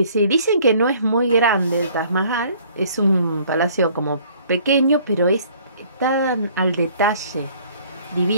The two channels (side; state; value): both; inverted; correlation -0.57